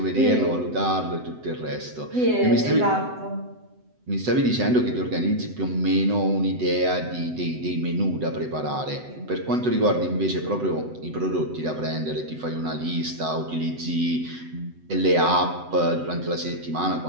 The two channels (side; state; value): left; late; 7.9 ms